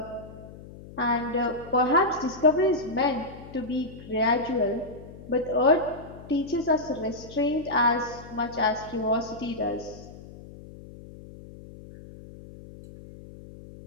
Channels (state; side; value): noise; left; hum, 16 dB below the sound